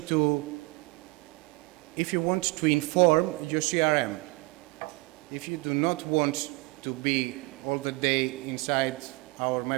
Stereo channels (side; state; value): left; quieter; 24.0 dB